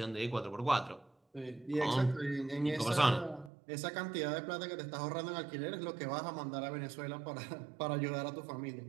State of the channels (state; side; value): drops out; left; at 3.5 s